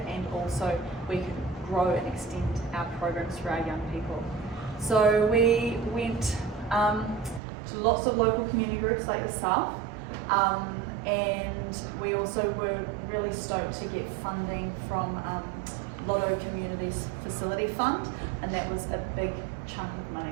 and also we could grow and extend our programs for our young people. So we went to lots of local community groups like yourself, and we also were really stoked to get funding from Lotto Communities Facility Fund, and that was a big chunk of money.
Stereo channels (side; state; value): left; drops out; at 7.4 s